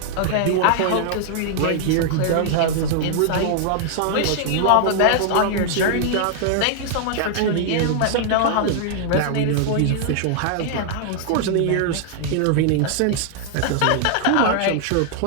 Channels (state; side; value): different; both; correlation 0.00